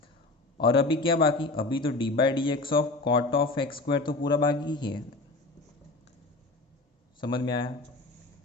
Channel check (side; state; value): right; quieter; 3.2 dB